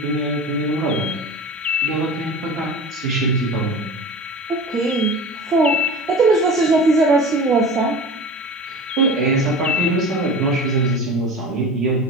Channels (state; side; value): normal; both; correlation 0.35